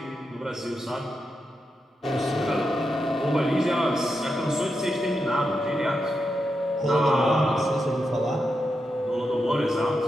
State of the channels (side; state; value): both; normal; correlation 0.86